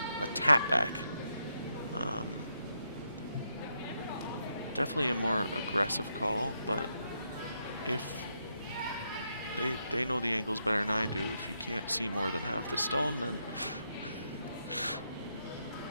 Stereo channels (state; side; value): inverted; both; correlation -0.81